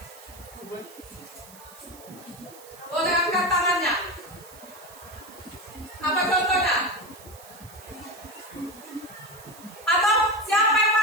Boleh angkat tangannya. Apa contohnya? Atau siapa yang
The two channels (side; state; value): right; noise; hiss, 20 dB below the sound